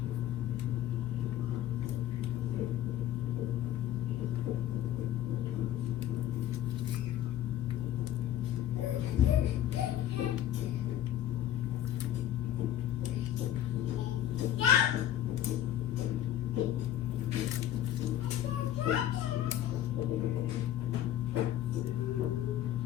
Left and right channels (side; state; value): right; quieter; 11.8 dB